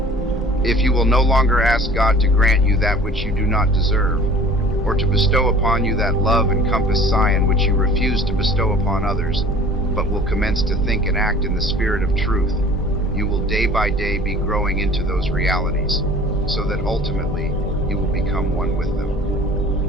if you will no longer ask God to grant you that which you do not deserve, or to bestow upon you that love and compass scion which you refuse to bestow upon others, but will commence to think and act in the spirit of truth, you will day by day be growing into those realities. so that ultimately you will become one with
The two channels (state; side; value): normal; both; correlation 0.47